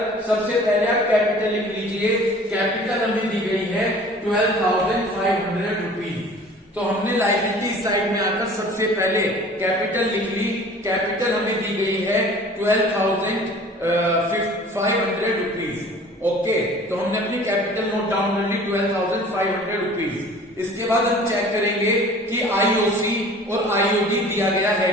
सबसे पहले आप कैपिटल लिख लीजिए। कैपिटल हमें दी गई है 12,500 रुपीज। तो हमने लायबिलिटी साइड में आकर सबसे पहले कैपिटल लिख ली। कैपिटल हमें दी गई है 12,500 रुपीज। ओके, तो हमने अपनी कैपिटल नोट डाउन कर ली 12,500 रुपीज। इसके बाद हम चेक करेंगे कि आईओसी और आईओडी दिया गया है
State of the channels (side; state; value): both; normal; correlation 0.47